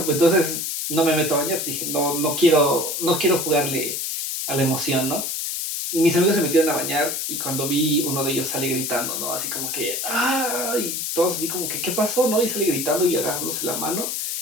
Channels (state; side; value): noise; left; hiss, 2 dB below the sound